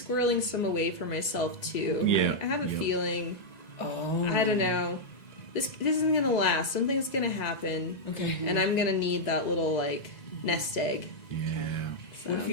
some away for myself too. Yeah. I have a feeling. Oh. I don't know. This isn't gonna last. Something's gonna happen. Okay. And I'm gonna need that little like nest egg. Yeah. So, What if you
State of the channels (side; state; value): right; late; 2.0 ms